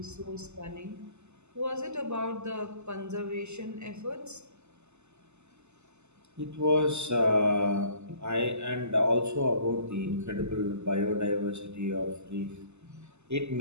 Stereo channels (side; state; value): left; late; 0.82 ms